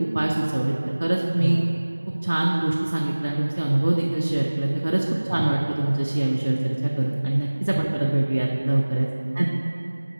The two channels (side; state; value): both; inverted; correlation -1.00